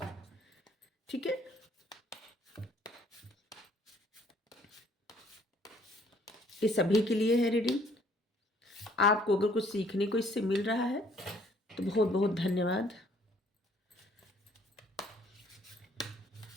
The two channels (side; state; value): both; normal; correlation 0.61